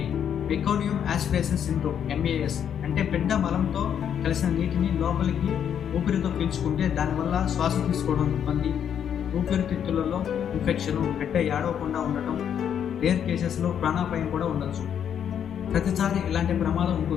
మెకానియం యాస్పిరేషన్ సిండ్రోమ్, MAS, అంటే బిడ్డ మలంతో కలిసిన నీటిని లోపలికి ఊపిరితో పీల్చుకుంటే దానివల్ల శ్వాస తీసుకోవడం ఇబ్బంది, ఊపిరితిత్తులలో ఇన్ఫెక్షన్, బిడ్డ ఏడవకుండా ఉండటం, రేర్ కేసెస్లో ప్రాణాపాయం కూడా ఉండొచ్చు. ప్రతిసారి ఇలాంటి ప్రమాదం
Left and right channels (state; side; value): quieter; right; 8.8 dB